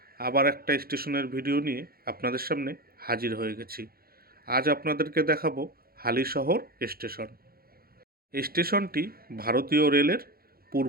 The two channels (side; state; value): left; late; 0.44 ms